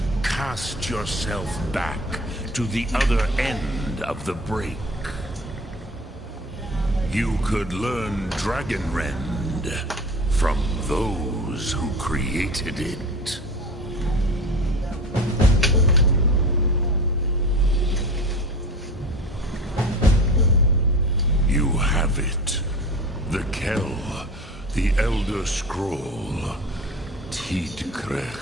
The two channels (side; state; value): both; normal; correlation 0.36